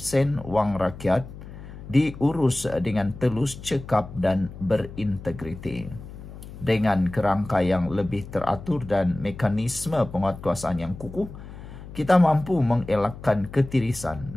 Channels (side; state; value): left; noise; hum, 14 dB below the sound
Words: wang rakyat diurus dengan telus, cekap dan berintegriti. Dengan kerangka yang lebih teratur dan mekanisme penguatkuasaan yang kukuh, kita mampu mengelakkan ketirisan,